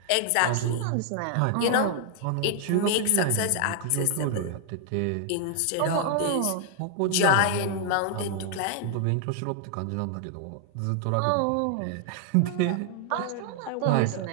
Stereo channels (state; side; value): different; both; correlation 0.00